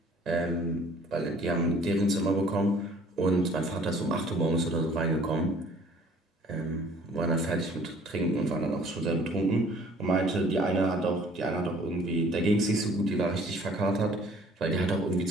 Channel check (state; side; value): normal; both; correlation 0.55